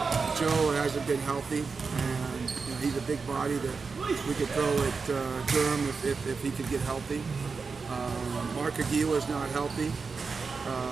Joe hasn't been healthy, and you know, he's a big body that we could throw at Durham if he could get healthy. Mark Aguila's not healthy,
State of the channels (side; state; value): left; quieter; 4.8 dB